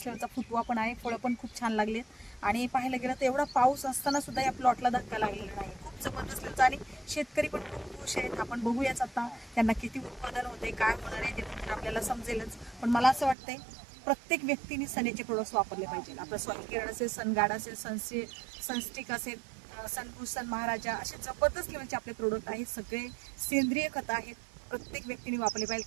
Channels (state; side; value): drops out; left; at 13.4 s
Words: लेवलचा फुटवा पण आहे. फळं पण खूप छान लागलेत आणि पाहायला गेलं तर एवढा पाऊस असताना सुद्धा या प्लॉटला धक्का लागलेला नाही. खूप जबरदस्त लेवलचा आणि शेतकरी पण खूप खुश आहेत. आपण बघूयाच आता त्यांना किती उत्पादन होते, काय होणार आहे ते आपल्याला समजेलच. पण मला असं वाटतंय प्रत्येक व्यक्तीने सनेचे प्रोडक्ट्स वापरले पाहिजे. आपलं सॉइल केअर असेल, सनगार्ड असेल, सनस्टिक असेल, सनभूषण महाराजा असे जबरदस्त लेवलचे आपले प्रोडक्ट आहेत. सगळे सेंद्रिय खत आहेत. प्रत्येक व्यक्तीने वापरले पाहिजे.